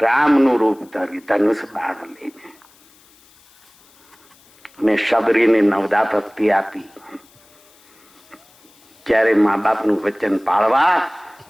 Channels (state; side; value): noise; left; hiss, 29 dB below the sound